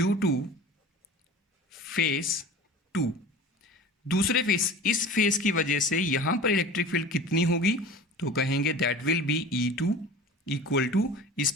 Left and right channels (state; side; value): normal; both; correlation 0.38